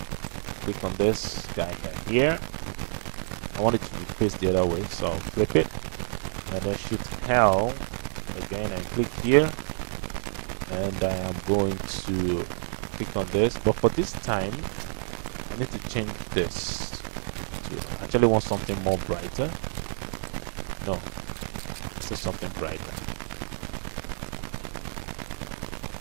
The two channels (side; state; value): left; silent; digital silence